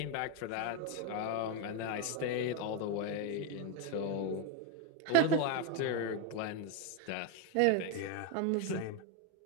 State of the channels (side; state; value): both; different; correlation 0.02